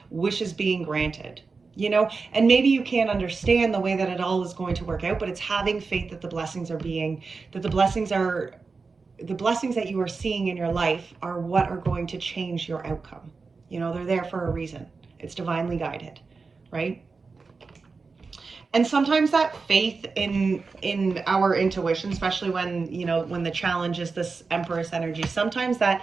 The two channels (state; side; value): quieter; left; 4.4 dB